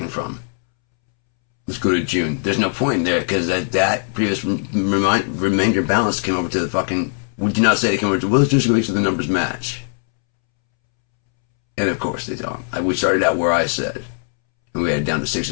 from. Let's go to June. There's no point in there because that previous remainder balance came over to the fucking. We do not say they came over to. Well, let's just make sure the numbers match. And of course they don't. We started out where I said, and we had it down to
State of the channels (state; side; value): silent; right; 66 dB below the other